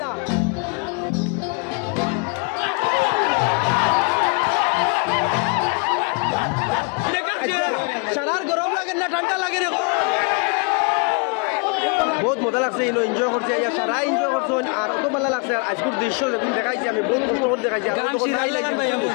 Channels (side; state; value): right; quieter; 34.6 dB